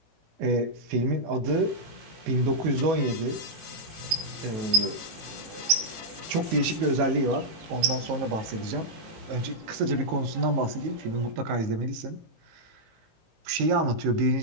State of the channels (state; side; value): late; left; 19 ms